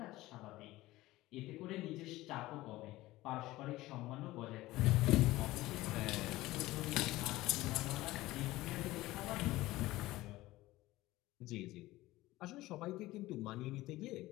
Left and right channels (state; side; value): quieter; right; 17.8 dB